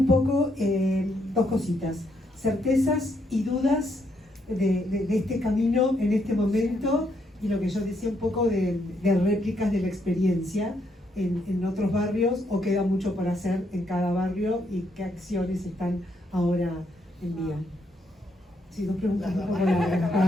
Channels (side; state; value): both; normal; correlation 0.75